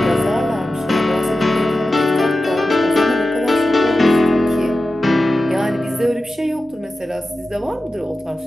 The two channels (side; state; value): both; normal; correlation 0.93